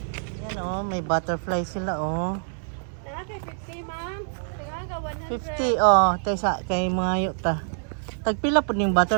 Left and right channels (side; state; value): left; silent; digital silence